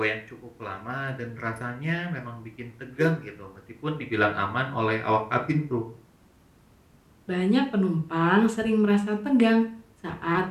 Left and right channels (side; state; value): both; identical; correlation 1.00